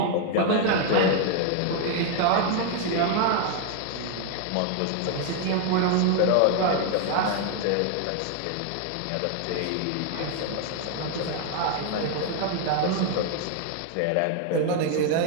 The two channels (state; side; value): different; both; correlation 0.00